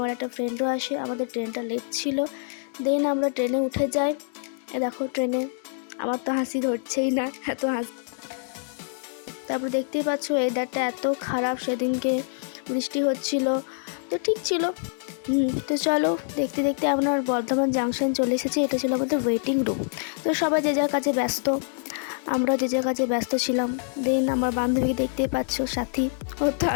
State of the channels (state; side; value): silent; right; digital silence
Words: একটা ফ্রেন্ডও আসে। আমাদের ট্রেনটা লেট ছিল, দেন আমরা ট্রেনে উঠে যাই। দেখো ট্রেনে আমার তো হাসি ধরছেই না, এত হাসি। তারপর দেখতেই পাচ্ছ ওয়েদারটা এত খারাপ, সেদিনকে বৃষ্টি হচ্ছিল, তো ঠিক ছিল। তো চলো দেখতে দেখতে আমরা বর্ধমান জাংশন চলে এসেছি। এটা ছিল আমাদের ওয়েটিং রুম। তো সবাই যে যার কাছে ব্যস্ত, আমরা যে যার কাছে ব্যস্ত ছিলাম। দেন আমার বান্ধবীকে দেখতেই পাচ্ছ, সাথী, ওর তো